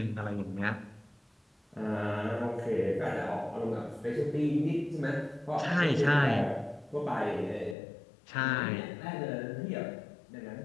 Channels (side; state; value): right; drops out; at 7.8 s